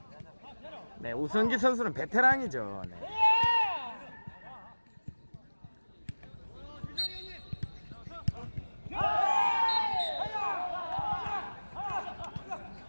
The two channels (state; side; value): inverted; both; correlation -1.00